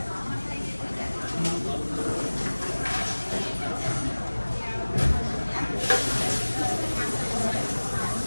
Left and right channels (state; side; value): inverted; both; correlation -1.00